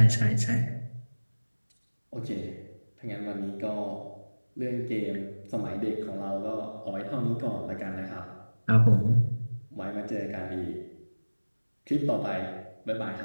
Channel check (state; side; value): inverted; both; correlation -1.00